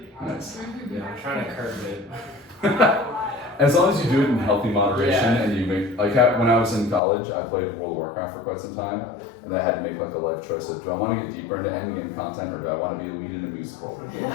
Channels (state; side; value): drops out; right; at 7.0 s